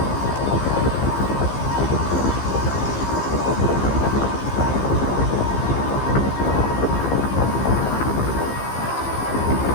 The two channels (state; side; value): late; right; 15 ms